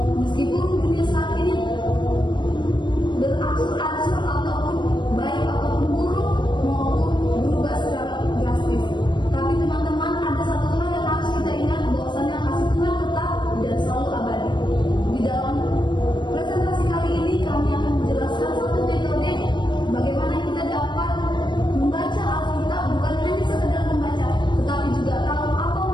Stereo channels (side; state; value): right; late; 0.22 ms